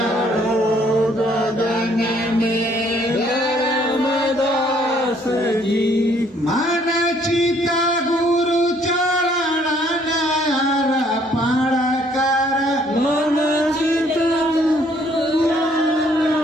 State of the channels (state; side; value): normal; both; correlation 0.64